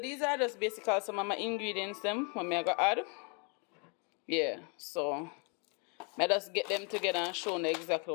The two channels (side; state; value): right; quieter; 35.0 dB